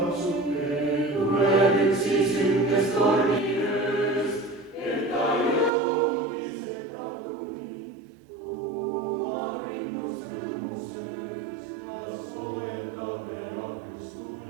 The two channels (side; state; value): left; drops out; at 5.7 s